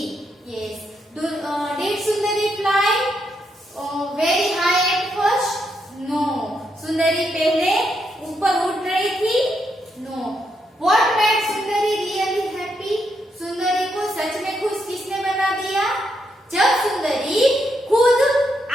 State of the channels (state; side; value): normal; both; correlation 0.79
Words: Yes, did Sundari fly very high at first? No. Sundari पहले ऊपर उड़ रही थी? No. What made Sundari really happy? Sundari को सच में खुश किसने बना दिया? जब सुंदरी खुद